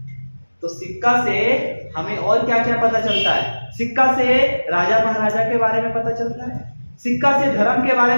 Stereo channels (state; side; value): inverted; both; correlation -1.00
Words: तो सिक्का से हमें और क्या क्या पता चलता है? सिक्का से राजा महाराजा के बारे में पता चलता है, सिक्का से धर्म के बारे